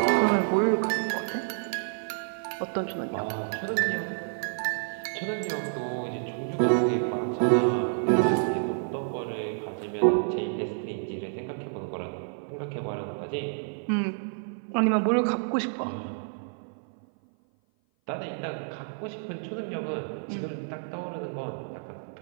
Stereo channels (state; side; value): silent; left; 56 dB below the other